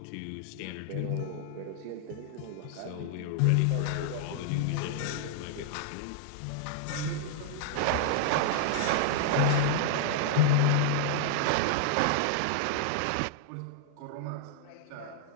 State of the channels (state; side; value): different; both; correlation -0.01